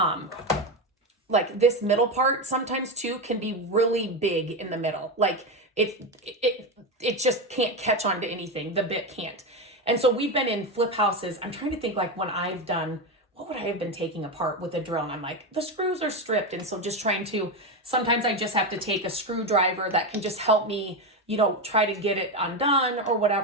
like this middle part sometimes too can be really big in the middle. Like it just can't catch on to anything. The bit can't. And so we've been in flip houses. I'm trying to think like when I've done, what would I have been taking apart with a drill? And I'm like, the screws are stripped. And so just trying to, sometimes I just have to take a screwdriver that can just help me, try to get it undone or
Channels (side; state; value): both; normal; correlation 0.14